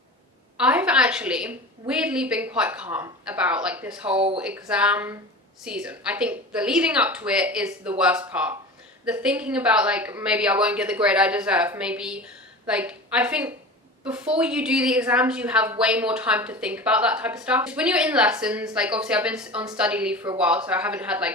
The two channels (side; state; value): both; normal; correlation 0.33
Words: I've actually weirdly been quite calm about like this whole exam season. I think the leading up to it is the worst part. The thinking about like, maybe I won't get the grade I deserve, maybe like, I think before you do the exams you have way more time to think about that type of stuff. When you're in lessons, like obviously I've been on study leave for a while, so I haven't had